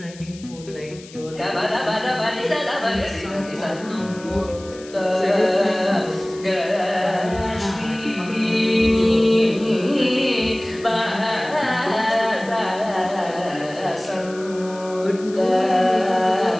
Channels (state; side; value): noise; left; hiss, 20 dB below the sound